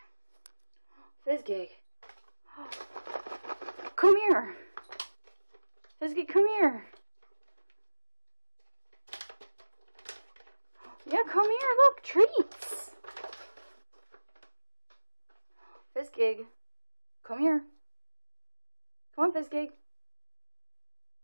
Fizzy. Come here. Fizzy, come here. Yeah, come here. Look, treats. Fizzy, come here. Come on, Fizzy.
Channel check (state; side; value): inverted; both; correlation -1.00